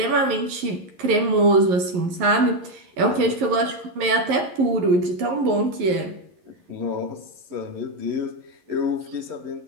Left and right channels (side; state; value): left; late; 11 ms